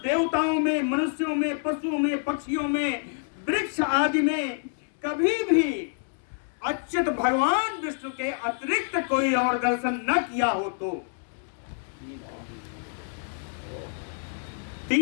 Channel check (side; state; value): right; silent; 60 dB below the other